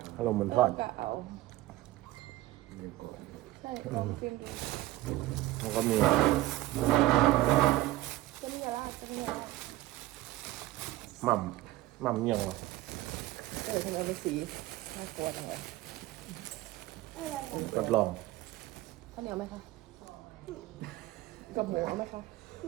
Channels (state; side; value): quieter; left; 17.1 dB